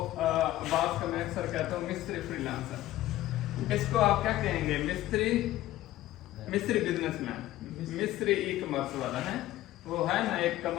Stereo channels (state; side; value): quieter; right; 15.1 dB